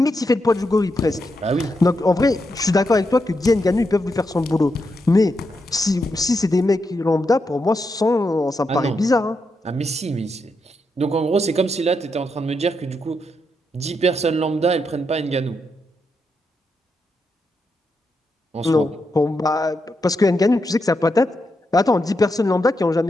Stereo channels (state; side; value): normal; both; correlation 0.83